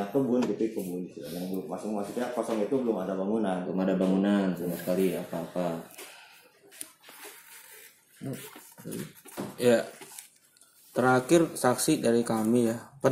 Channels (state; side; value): identical; both; correlation 1.00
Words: kebun gitu kebun. Yang belum maksudnya kosong itu belum ada bangunan. Belum ada bangunan sama sekali apa-apa. Ya. Terakhir saksi dari kami ya.